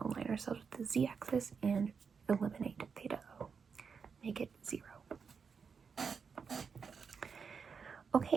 align ourselves with the z-axis and eliminate theta O. Make it 0.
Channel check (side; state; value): left; quieter; 5.9 dB